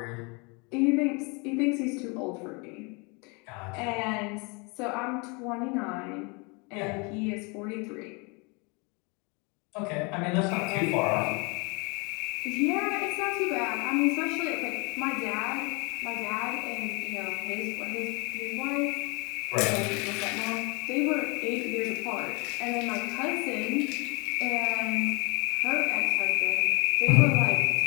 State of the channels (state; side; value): quieter; right; 30.4 dB